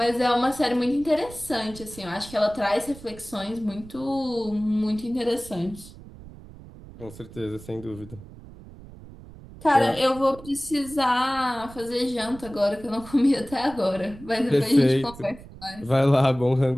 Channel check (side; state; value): right; noise; rumble, 17 dB below the sound